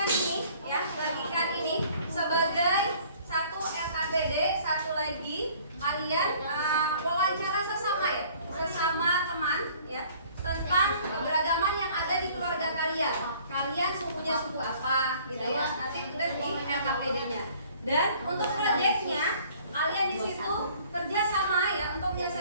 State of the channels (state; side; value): inverted; both; correlation -0.55